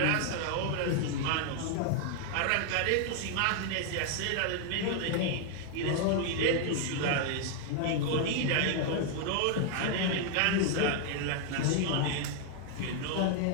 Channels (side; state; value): both; different; correlation 0.00